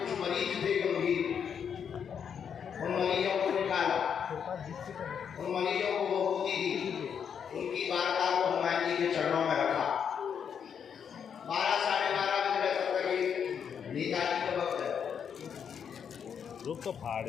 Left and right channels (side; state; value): right; quieter; 7.5 dB